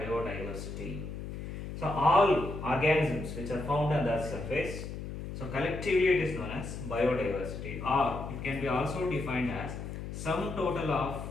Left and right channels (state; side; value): noise; left; hum, 7 dB below the sound